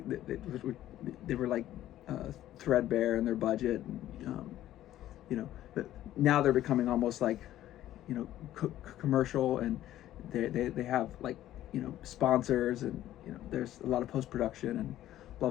they were like threadbare in their budget, and, but now they're becoming almost like commercial, and they have like sponsors, and there's a lot of post-production and blah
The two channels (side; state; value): right; quieter; 13.3 dB